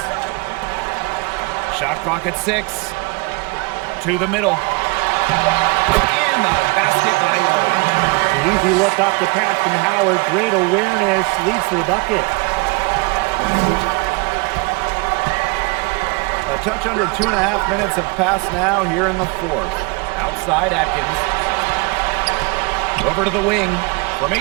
Shot clock at 6. To the middle. And the basket by Lloyd. Easy look off the pass from Howard. Great awareness. Leads to the bucket. A touch under 2.5 minutes have passed now here in the fourth. Outside Atkins. Over to the wing. From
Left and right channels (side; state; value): left; quieter; 28.5 dB